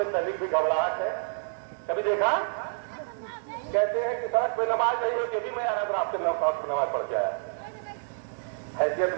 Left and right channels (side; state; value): left; silent; digital silence